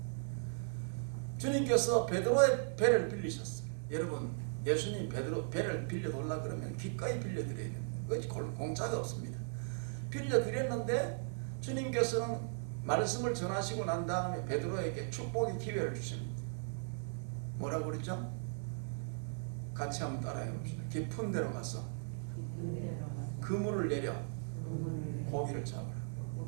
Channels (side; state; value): left; silent; 53 dB below the other